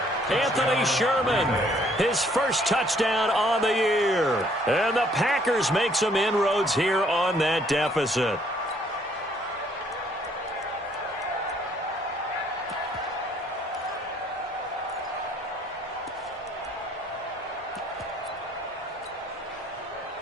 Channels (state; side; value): normal; both; correlation 0.64